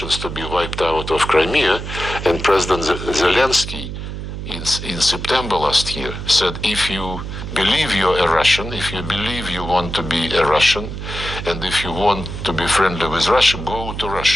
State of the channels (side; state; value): right; noise; hum, 7 dB below the sound